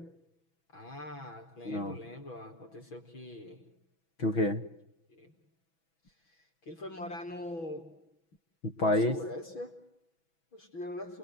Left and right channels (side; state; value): right; late; 6.1 ms